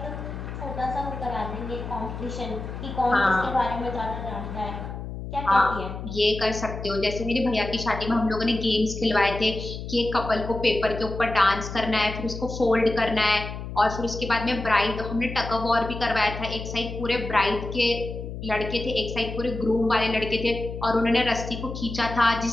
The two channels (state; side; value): noise; left; hum, 8 dB below the sound